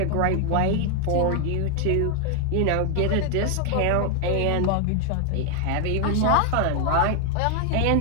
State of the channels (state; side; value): different; both; correlation 0.00